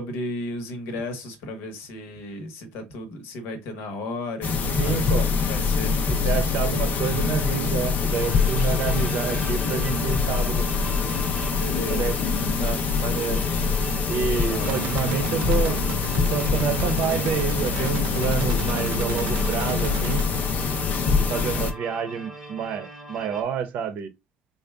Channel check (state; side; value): normal; both; correlation 0.53